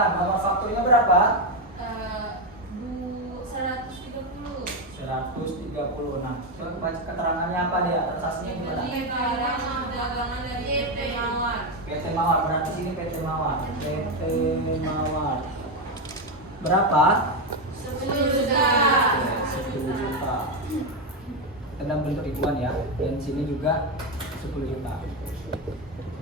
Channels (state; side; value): normal; both; correlation 0.09